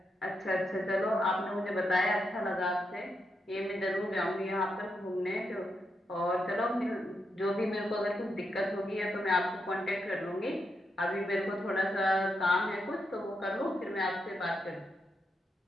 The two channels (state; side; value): normal; both; correlation 0.83